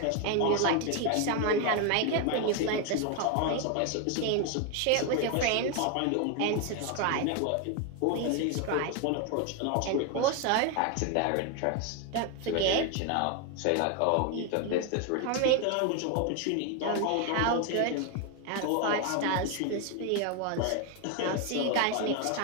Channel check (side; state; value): both; different; correlation 0.01